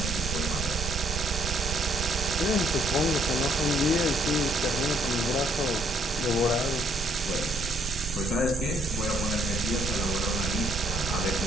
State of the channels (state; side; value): normal; both; correlation 0.67